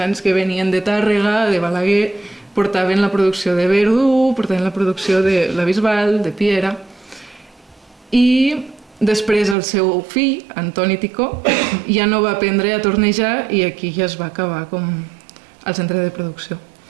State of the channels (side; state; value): left; drops out; at 9.6 s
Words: que venien de Tàrrega, de Balaguer, portaven la producció de Verdú, portaven la producció de la Bisbal, de Piera, i després el seu fill, Antoni Ticó, ja no va aprendre a tornejar i aquí ja es va acabar com el centre de producció.